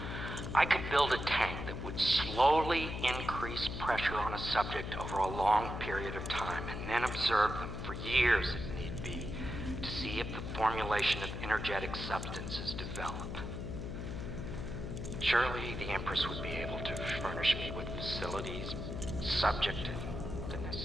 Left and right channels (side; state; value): left; noise; hum, 5 dB below the sound